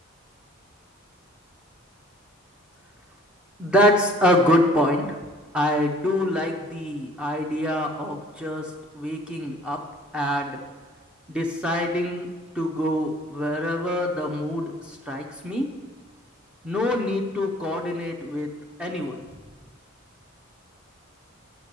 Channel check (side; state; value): both; normal; correlation 0.54